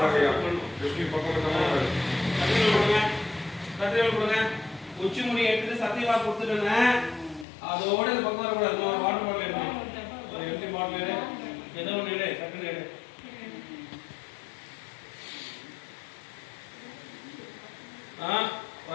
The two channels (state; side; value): drops out; right; at 7.5 s